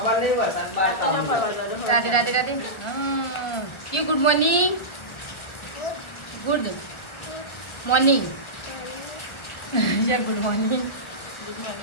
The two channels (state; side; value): late; right; 1.2 ms